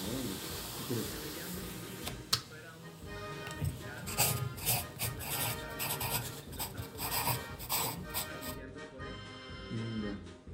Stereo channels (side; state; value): both; identical; correlation 1.00